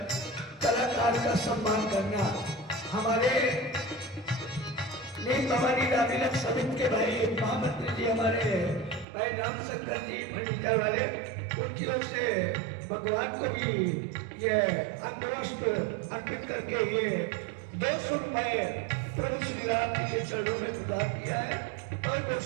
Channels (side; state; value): left; drops out; at 9.1 s